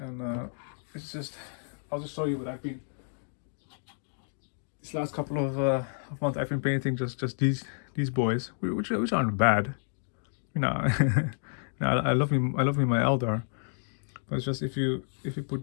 it's just, I'll just show you what I've been, these last couple of months I've been painting just these boys, which aren't bad, you know. I love me my Eldar, but it's just if you put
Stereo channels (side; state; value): right; silent; digital silence